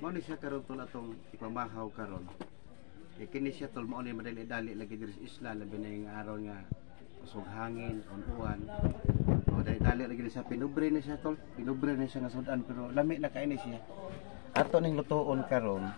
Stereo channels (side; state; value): right; silent; digital silence